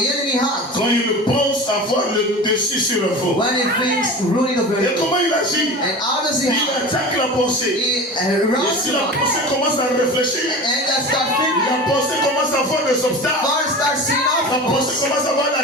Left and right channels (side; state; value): both; normal; correlation 0.33